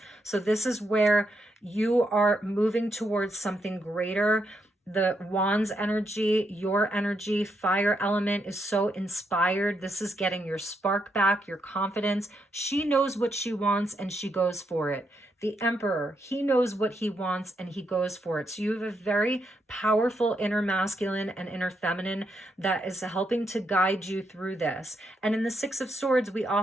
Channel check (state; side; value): normal; both; correlation 0.79